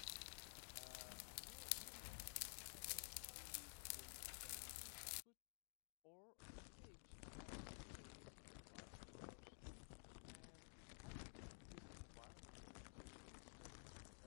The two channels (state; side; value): silent; right; digital silence